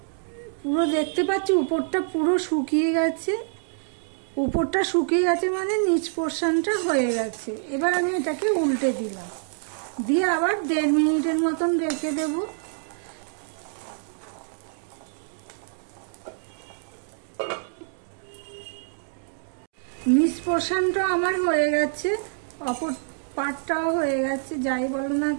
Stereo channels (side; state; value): left; silent; digital silence